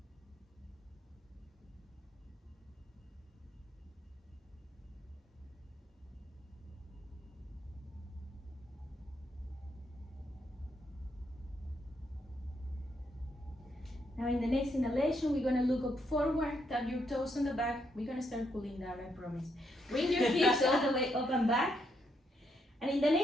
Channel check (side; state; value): both; normal; correlation 0.77